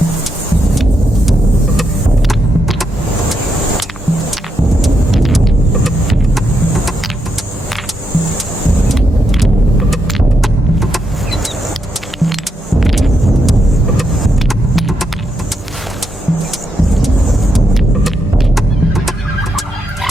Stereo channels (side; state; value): both; normal; correlation 0.81